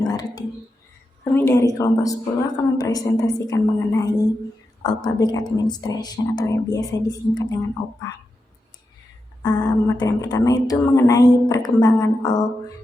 Kami dari kelompok 10 akan mempresentasikan mengenai All Public Administration atau yang biasa disingkat dengan OPA. Materi yang pertama itu mengenai perkembangan All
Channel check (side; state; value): both; normal; correlation 0.88